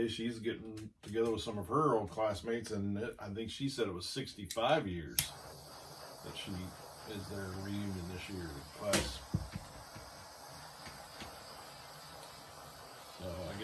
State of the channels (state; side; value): identical; both; correlation 1.00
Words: she's getting together with some of her old classmates, and I think she said it was 65 years that she is their reunion this year class. So I